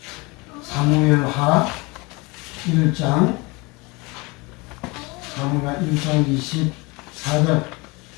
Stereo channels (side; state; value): right; quieter; 26.0 dB